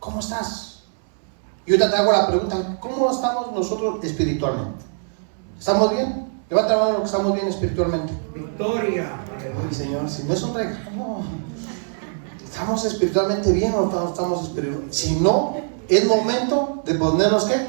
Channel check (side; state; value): left; silent; 64 dB below the other